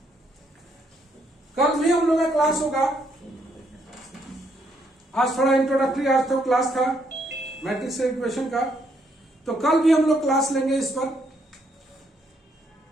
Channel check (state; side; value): normal; both; correlation 0.73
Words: कल भी हम लोग का क्लास होगा। आज थोड़ा इंट्रोडक्टरी, आज तो क्लास था मैट्रिक्स इक्वेशन का, तो कल भी हम लोग क्लास लेंगे इस पर।